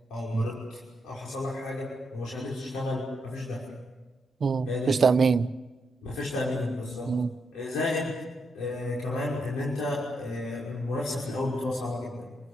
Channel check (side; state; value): both; normal; correlation 0.81